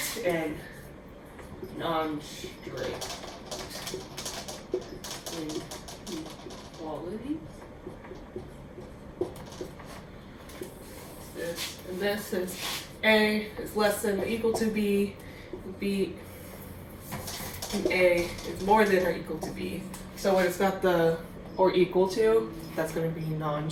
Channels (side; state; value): both; identical; correlation 1.00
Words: and non-strict inequality. This is A is less than or equal to B, B and A is more than or equal to B. So when it's got the or equal to, that's going to be